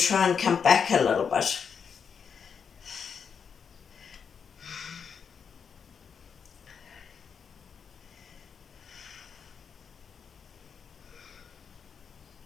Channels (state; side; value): quieter; right; 6.6 dB